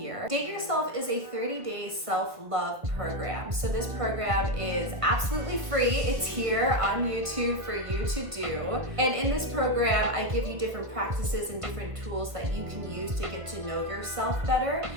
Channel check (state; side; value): late; left; 1.5 ms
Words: Date Yourself is a 30-day self-love program. So this program is absolutely free. It's here on YouTube for you to do. And in this program, I give you different practices and different tools that you can use to get to know yourself better